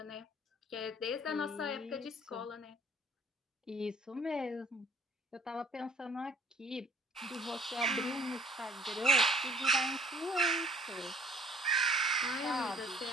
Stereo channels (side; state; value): both; normal; correlation 0.55